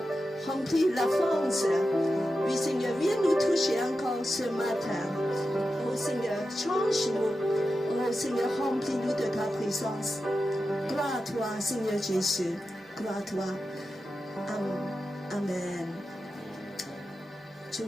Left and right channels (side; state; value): both; normal; correlation 0.91